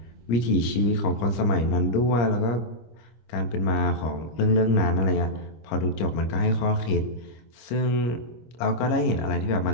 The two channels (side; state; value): right; late; 25 ms